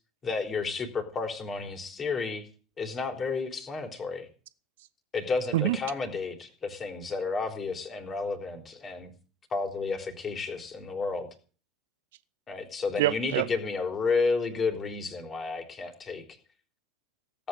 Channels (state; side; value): normal; both; correlation 0.55